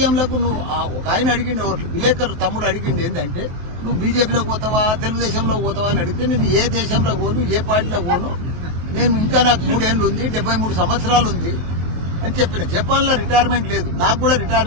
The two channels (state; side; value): late; left; 23 ms